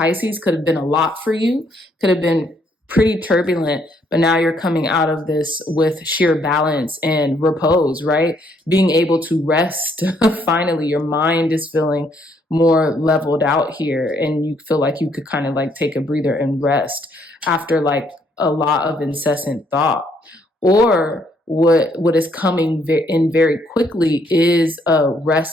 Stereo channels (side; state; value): both; normal; correlation 0.69